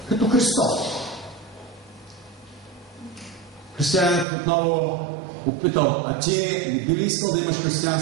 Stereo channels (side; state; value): left; drops out; at 4.2 s